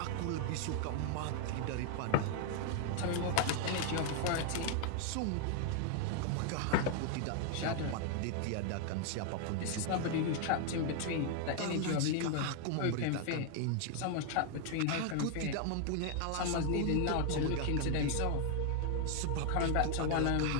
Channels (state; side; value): different; both; correlation 0.00